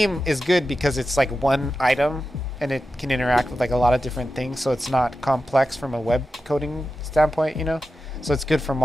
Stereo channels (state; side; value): normal; both; correlation 0.91